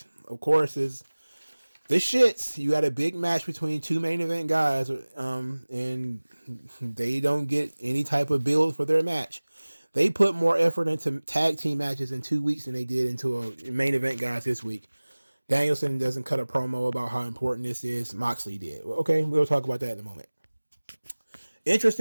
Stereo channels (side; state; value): both; inverted; correlation -1.00